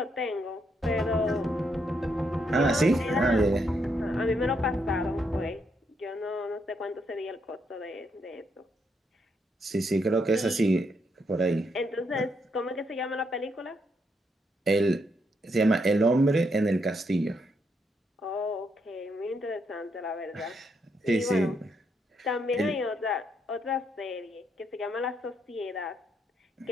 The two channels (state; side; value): normal; both; correlation 0.77